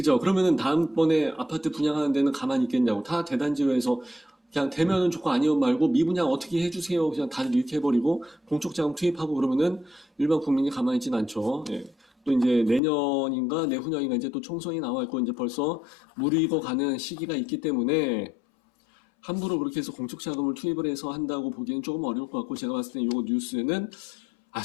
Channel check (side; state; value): right; drops out; at 12.8 s